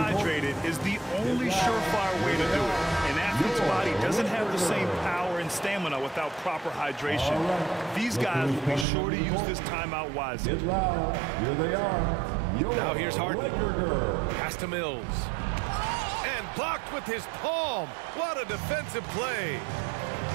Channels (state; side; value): drops out; left; at 8.8 s